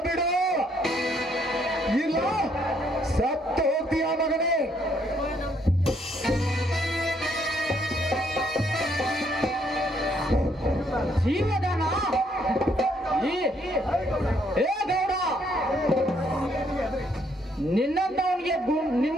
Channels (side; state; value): both; normal; correlation 0.70